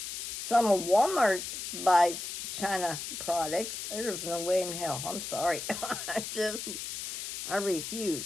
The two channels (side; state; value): left; noise; hiss, 6 dB below the sound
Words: of Walmart buys China products. There's no way in hell. I'm sorry. I